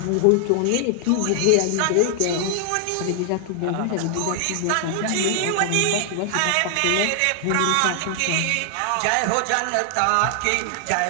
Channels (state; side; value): different; both; correlation 0.00